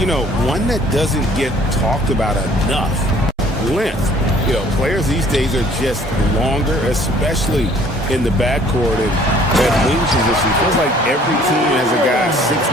know, one that doesn't get talked about enough, length. You know, players these days are just longer, especially in the backcourt and at wing position. It feels like every team has a guy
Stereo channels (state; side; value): normal; both; correlation 0.56